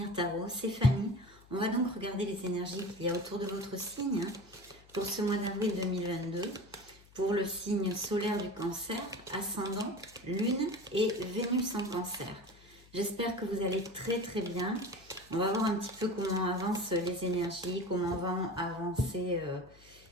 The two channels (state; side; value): noise; left; hum, 25 dB below the sound